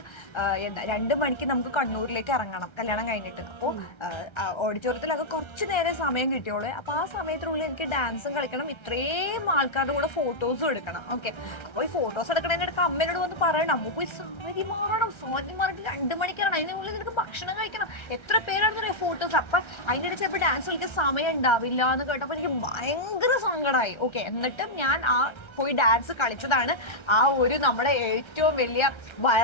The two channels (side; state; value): right; late; 1.3 ms